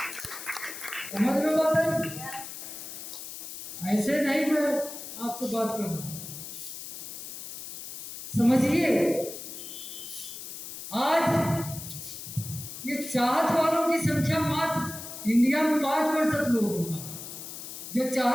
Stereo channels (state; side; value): noise; left; hiss, 10 dB below the sound